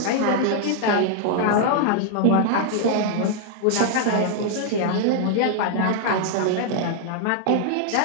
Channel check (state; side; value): different; both; correlation 0.00